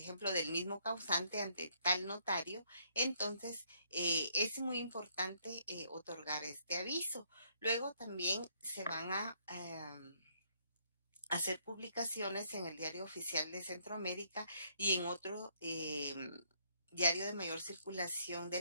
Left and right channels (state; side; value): inverted; both; correlation -0.69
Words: del mismo causante ante tal notario, entonces es muy importante otorgar este aviso. Luego también se van a hacer publicaciones en el Diario Oficial de Centroamérica y en otro diario de mayor circulación